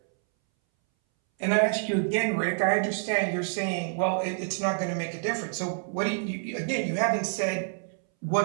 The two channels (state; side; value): silent; left; 60 dB below the other